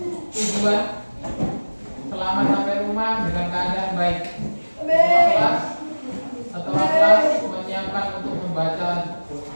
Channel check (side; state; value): both; inverted; correlation -1.00